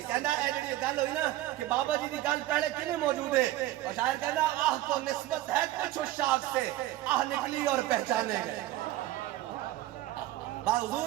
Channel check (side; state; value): left; quieter; 15.4 dB